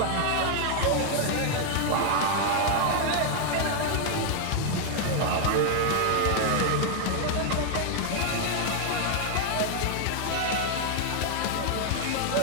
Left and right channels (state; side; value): different; both; correlation 0.00